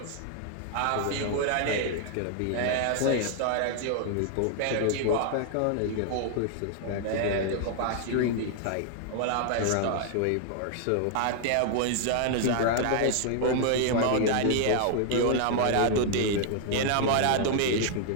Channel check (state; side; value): different; both; correlation 0.00